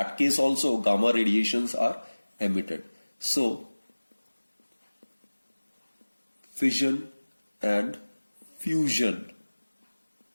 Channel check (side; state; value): both; inverted; correlation -1.00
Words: case also gamma radiations are emitted. So fission and fusion